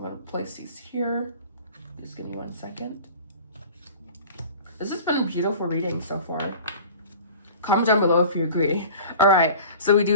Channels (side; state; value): both; inverted; correlation -0.41